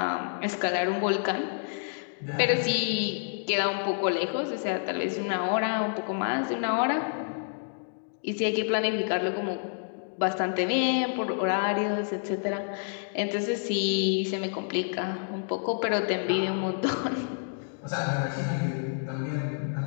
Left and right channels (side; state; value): right; silent; digital silence